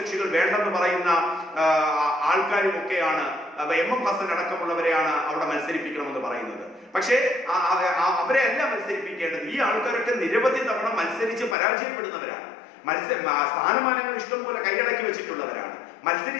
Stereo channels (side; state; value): right; drops out; at 11.6 s